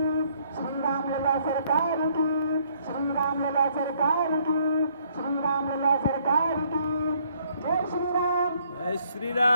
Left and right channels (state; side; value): inverted; both; correlation -0.67